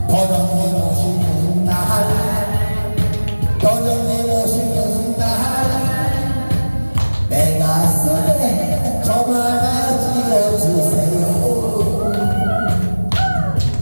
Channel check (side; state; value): both; inverted; correlation -1.00